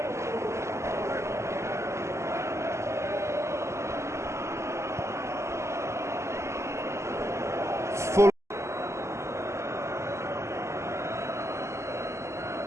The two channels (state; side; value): late; left; 0.13 ms